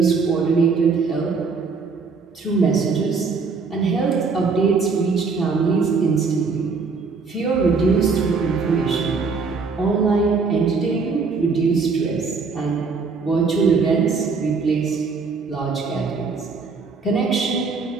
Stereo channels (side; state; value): left; quieter; 4.8 dB